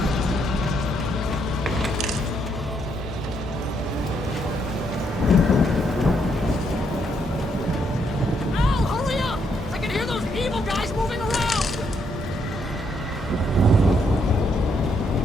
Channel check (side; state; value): both; normal; correlation 0.75